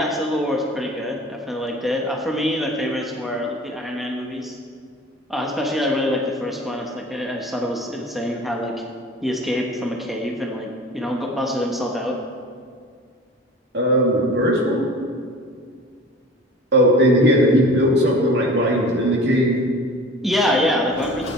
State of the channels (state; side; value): normal; both; correlation 0.41